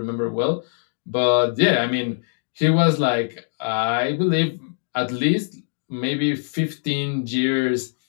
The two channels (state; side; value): silent; right; digital silence